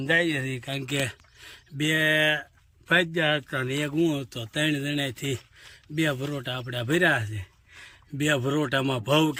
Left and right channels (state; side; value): identical; both; correlation 1.00